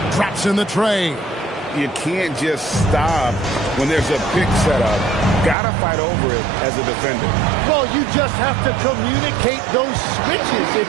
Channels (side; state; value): left; drops out; at 5.6 s